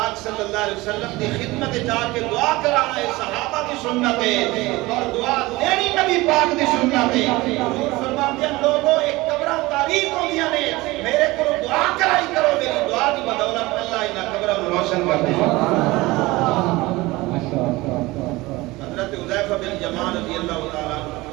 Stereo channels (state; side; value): quieter; left; 20.6 dB